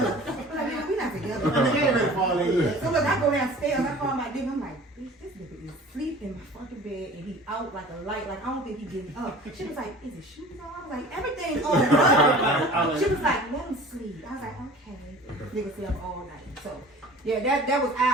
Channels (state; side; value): normal; both; correlation 0.44